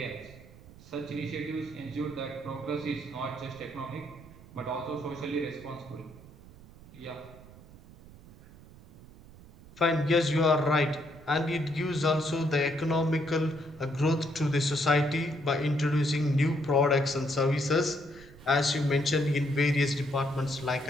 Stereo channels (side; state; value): right; noise; rumble, 20 dB below the sound